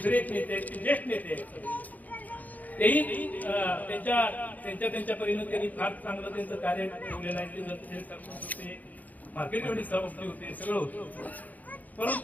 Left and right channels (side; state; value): right; late; 0.080 ms